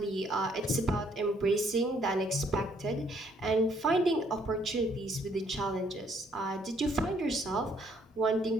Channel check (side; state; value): both; normal; correlation 0.67